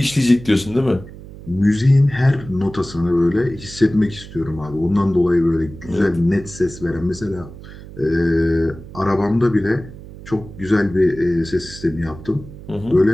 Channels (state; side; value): noise; right; hum, 16 dB below the sound